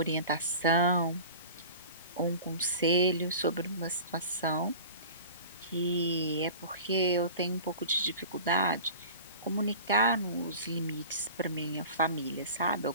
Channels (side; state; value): both; inverted; correlation -0.39